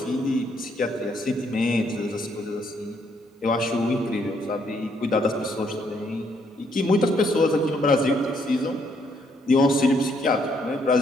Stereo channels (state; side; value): normal; both; correlation 0.71